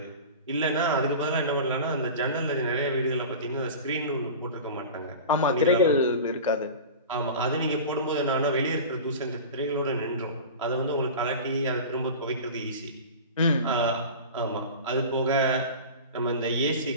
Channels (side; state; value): both; inverted; correlation -0.32